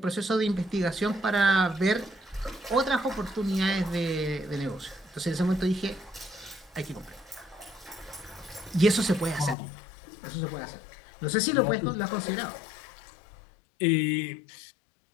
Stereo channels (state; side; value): drops out; right; at 9.6 s